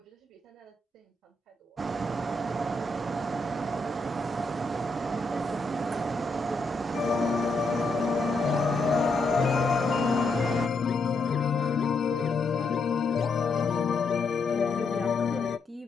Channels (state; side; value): quieter; right; 3.2 dB